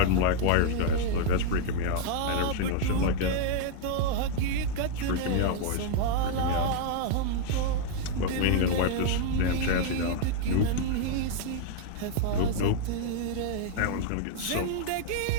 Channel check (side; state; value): both; different; correlation 0.00